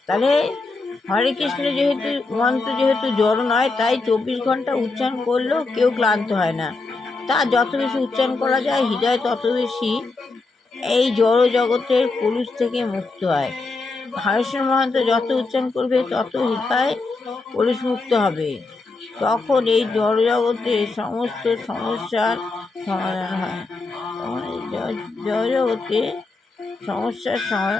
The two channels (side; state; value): right; quieter; 3.7 dB